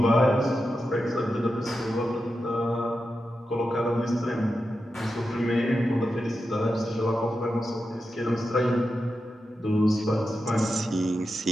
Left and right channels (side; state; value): both; normal; correlation 0.89